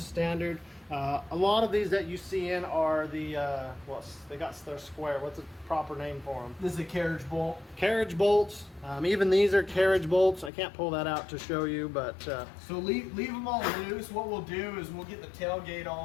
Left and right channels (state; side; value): drops out; right; at 10.5 s